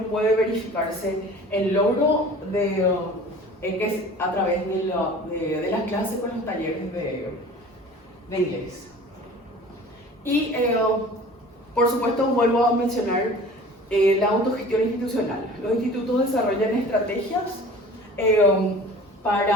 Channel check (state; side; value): normal; both; correlation 0.43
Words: verificarse el logro que es a través de las clases con los talleres de inglés. Y por supuesto vuelvo a mencionar la autogestión institucional. Los institutos desarrollan estrategias